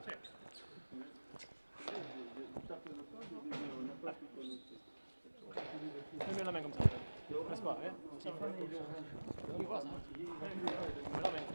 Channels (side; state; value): both; inverted; correlation -1.00